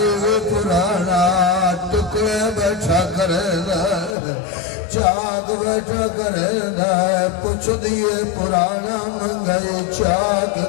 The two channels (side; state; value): right; drops out; at 4.2 s